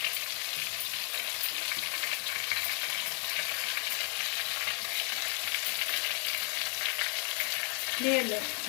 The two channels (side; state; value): right; quieter; 37.3 dB